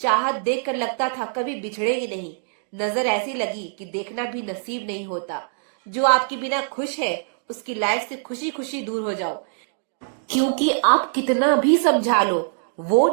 देखकर लगता था कभी बिछड़ेंगे नहीं। नजर ऐसी लगी कि देखना भी नसीब नहीं होता। जो आपके बिना खुश है उसकी लाइफ से खुशी खुशी दूर हो जाओ, क्योंकि आप कितना भी समझा लो वो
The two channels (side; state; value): left; silent; digital silence